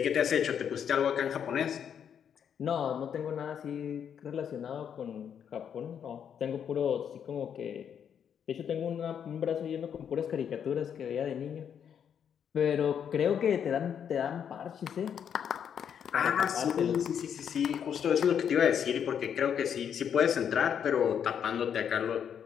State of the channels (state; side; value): quieter; right; 8.2 dB